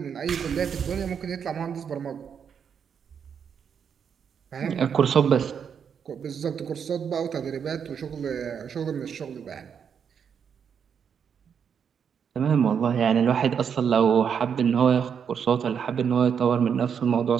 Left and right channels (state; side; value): quieter; left; 7.3 dB